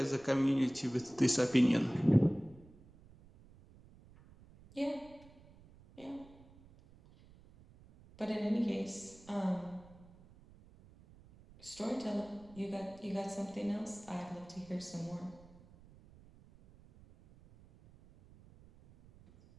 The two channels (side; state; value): right; noise; rumble, 23 dB below the sound